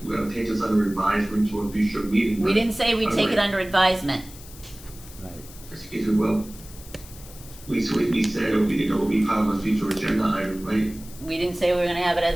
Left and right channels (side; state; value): left; noise; hiss, 19 dB below the sound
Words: gonna take this under advisement to a future meeting. We didn't say we'd take it under advisement. Right. Excuse me, well, we said it would be part of a future agenda item, right? We didn't say we were gonna have it